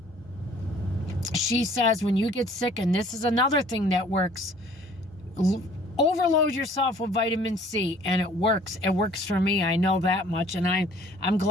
she says when you get sick, and this is another thing that works, overload yourself with vitamin C, and it works. It works for me. I know that much, and I'm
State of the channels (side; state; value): both; normal; correlation 0.55